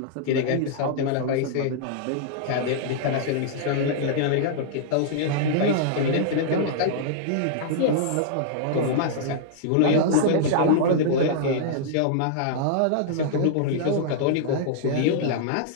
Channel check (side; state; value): both; different; correlation -0.01